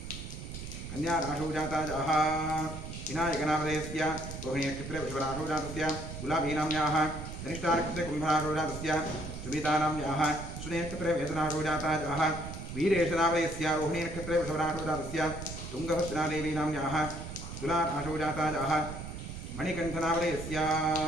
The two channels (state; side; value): noise; right; rumble, 9 dB below the sound